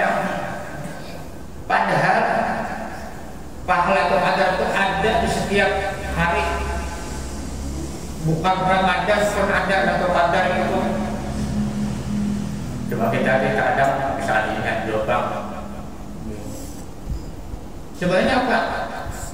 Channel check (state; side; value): identical; both; correlation 1.00